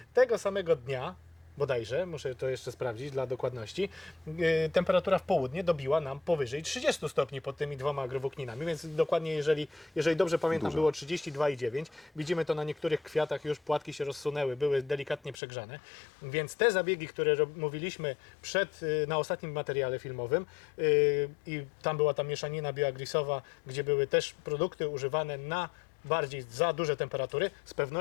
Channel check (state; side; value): drops out; right; at 15.4 s